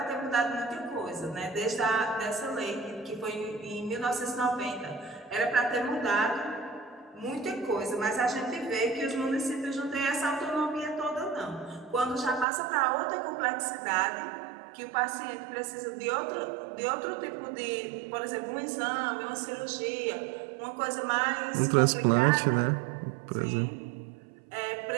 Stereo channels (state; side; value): drops out; left; at 12.5 s